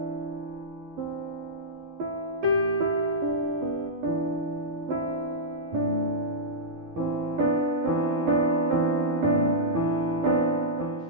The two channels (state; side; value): late; left; 11 ms